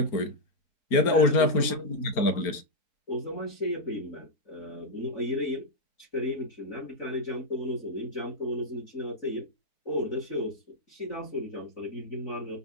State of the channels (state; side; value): late; right; 4.4 ms